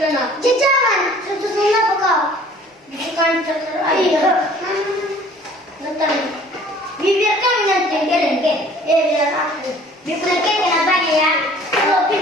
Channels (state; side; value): normal; both; correlation 0.52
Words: nak. Jangan. Susun apa kau? Bukan terus. Iya. Betul. Biarkan nanti kelengke. Biar aku. Biarkan kenapa ya? Kalau